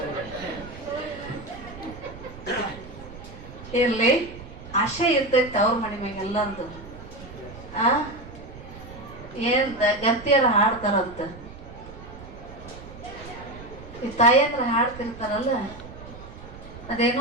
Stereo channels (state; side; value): noise; right; rumble, 15 dB below the sound